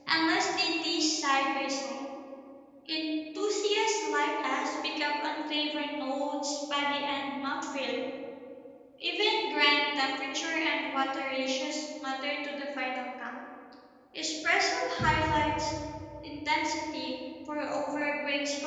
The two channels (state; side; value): identical; both; correlation 1.00